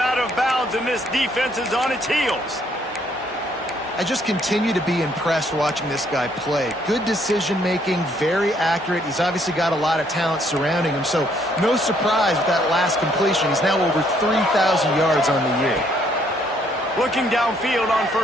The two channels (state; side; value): normal; both; correlation 0.68